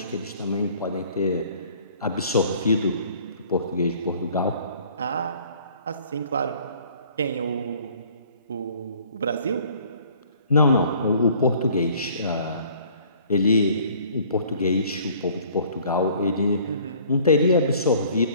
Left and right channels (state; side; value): inverted; both; correlation -0.55